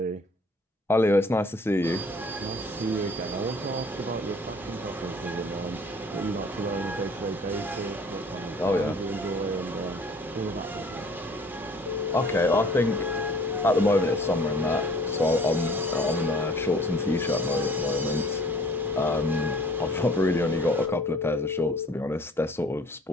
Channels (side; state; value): both; normal; correlation 0.53